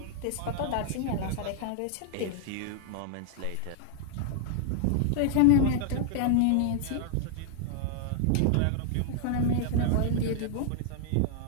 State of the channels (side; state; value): both; different; correlation 0.00